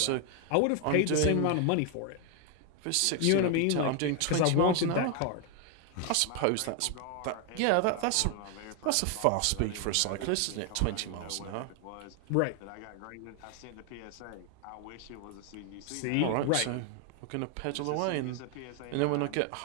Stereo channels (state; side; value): different; both; correlation 0.00